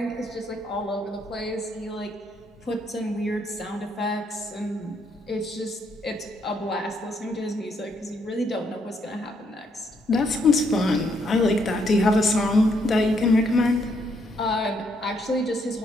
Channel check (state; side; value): normal; both; correlation 0.73